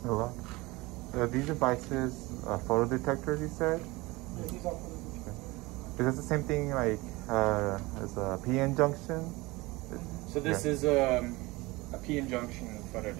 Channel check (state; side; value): quieter; left; 22.1 dB